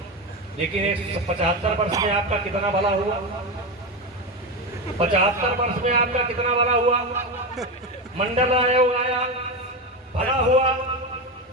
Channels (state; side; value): normal; both; correlation 0.16